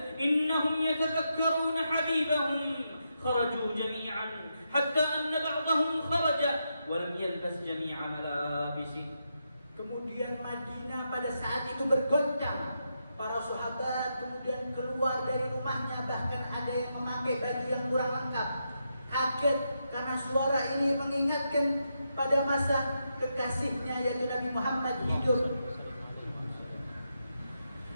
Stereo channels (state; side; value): inverted; both; correlation -0.83